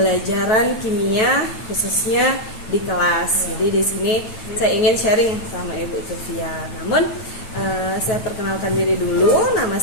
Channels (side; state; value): right; late; 9.1 ms